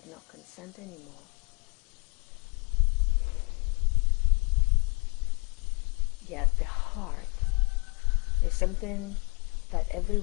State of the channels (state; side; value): quieter; right; 32.6 dB